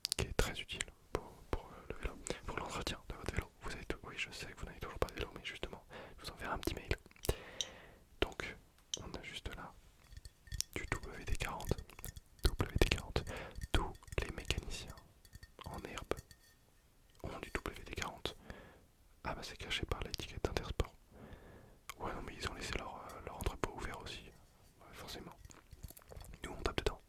qui est très utile pour le vélo, pour l'entretien de votre vélo. Vous avez tout, oui, je sais que vous n'avez toujours pas de vélo, mais justement, je vous enverrai un petit mail. Donc, on a juste là du WD-40. WD-40. Tous les mécaniciens en herbe ont du WD-40. Ah bah c'est caché par l'étiquette Intersport. Ouais non mais ils ont laissé leur entrepôt ouvert aussi. Ouais, forcément. Nous on tape dedans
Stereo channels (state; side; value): identical; both; correlation 1.00